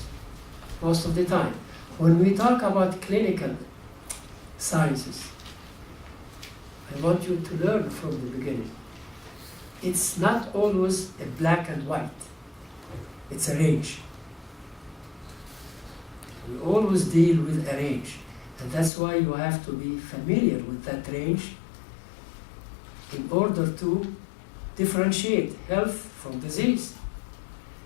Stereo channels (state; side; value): drops out; right; at 18.9 s